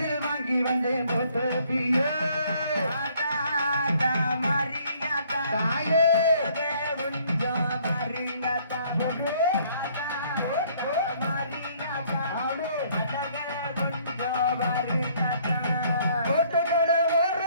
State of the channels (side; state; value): both; inverted; correlation -0.62